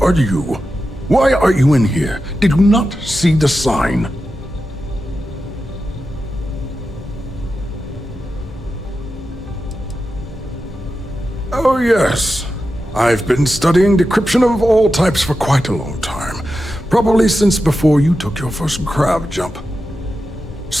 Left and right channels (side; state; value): both; normal; correlation 0.91